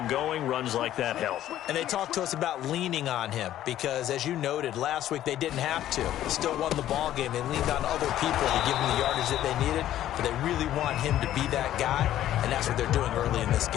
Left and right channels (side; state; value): right; quieter; 12.6 dB